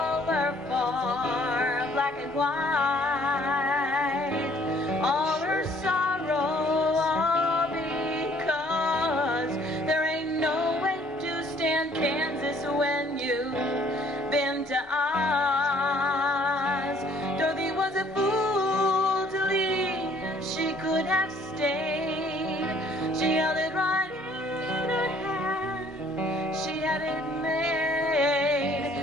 for black and white. All her sorrow, all because there ain't no way to stand Kansas when you've been to Oz. Dorothy was a fool to leave. She could have stayed. She held it right in her hand. She had it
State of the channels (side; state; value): both; normal; correlation 0.60